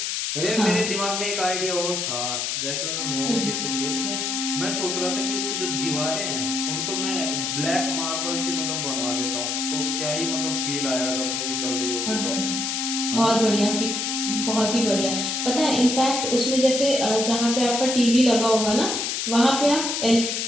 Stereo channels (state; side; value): noise; left; hiss, 1 dB below the sound